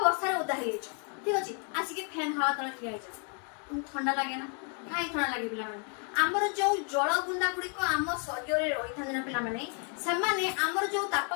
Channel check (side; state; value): right; quieter; 40.0 dB